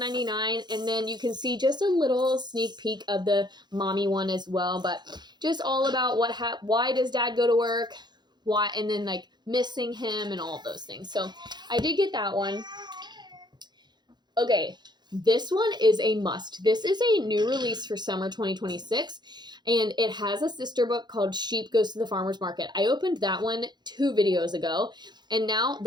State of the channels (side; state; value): left; late; 0.21 ms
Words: and then you can see just a little sneak peek of the mommy one as well, but just all about why does Dad go to work, why, and then like missing him and all of those things. So I did get that one. Okay, this one is a must. This is a new release for summer 2026. And it has a sister book called Sheep Goes to the Farmer's Market. I opened that one 2 videos ago. And now